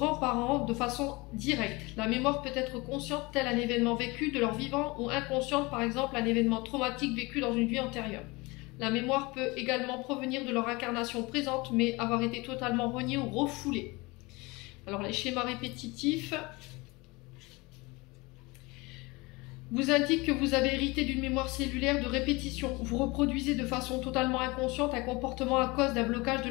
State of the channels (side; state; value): right; quieter; 24.3 dB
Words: de façon directe. La mémoire peut être consciente, tel un événement vécu de leur vivant, ou inconsciente, par exemple un événement traumatique vécu dans une vie antérieure. La mémoire peut également provenir de leur incarnation présente, mais avoir été totalement reniée ou refoulée. Alors les schémas répétitifs vous indiquent que vous avez hérité d'une mémoire cellulaire de répétition. Vous reproduisez de façon totalement inconsciente un comportement à cause d'un blocage de